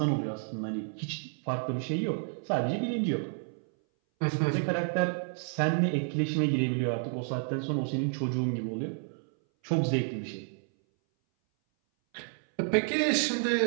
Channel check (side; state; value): left; silent; 58 dB below the other